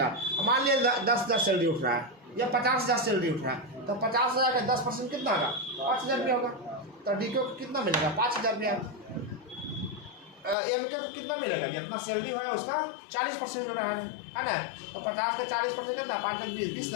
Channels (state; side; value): drops out; right; at 10.6 s